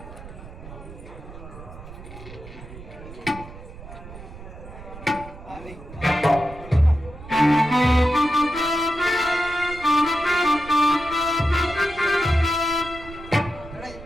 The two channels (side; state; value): right; noise; rumble, 15 dB below the sound